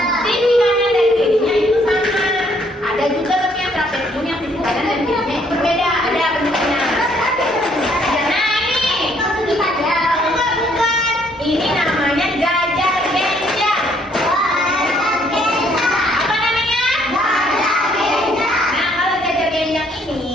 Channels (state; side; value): normal; both; correlation 0.66